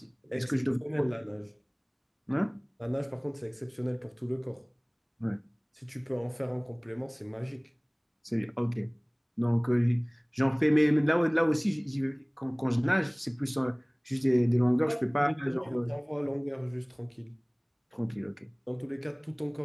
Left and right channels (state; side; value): identical; both; correlation 1.00